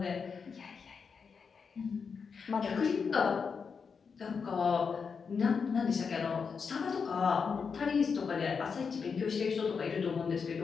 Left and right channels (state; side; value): quieter; right; 5.7 dB